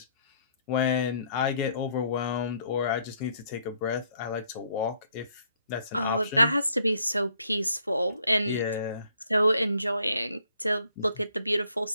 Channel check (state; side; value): inverted; both; correlation -0.67